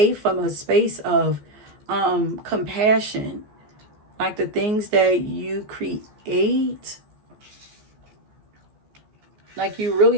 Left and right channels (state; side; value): late; left; 14 ms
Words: from a space of compassion. Like the things that you create, like you